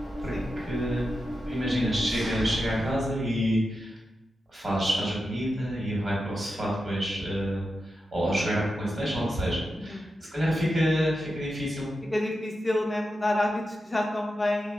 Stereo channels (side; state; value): both; normal; correlation 0.89